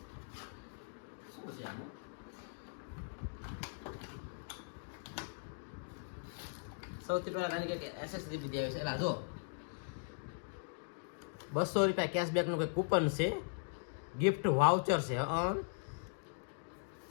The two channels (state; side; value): silent; right; digital silence